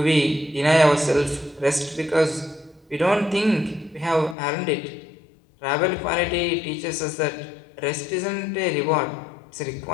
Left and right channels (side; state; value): right; drops out; at 4.4 s